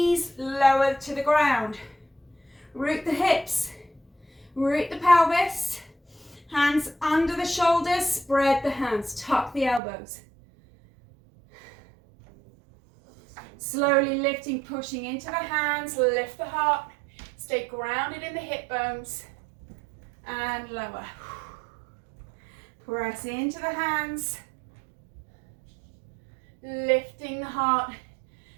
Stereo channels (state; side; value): drops out; left; at 9.8 s